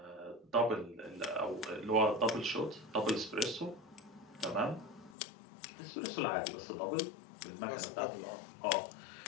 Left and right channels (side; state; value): right; drops out; at 5.2 s